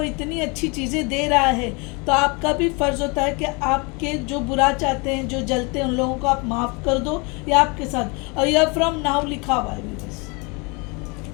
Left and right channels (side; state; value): right; quieter; 29.9 dB